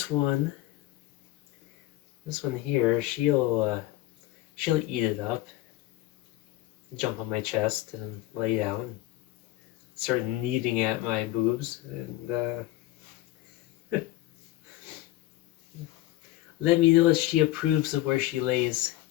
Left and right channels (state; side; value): quieter; right; 16.1 dB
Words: one here, she'll eat it up, jump on my chest and lay down, start kneading at my boobs, and let me know if she approves of where she lays.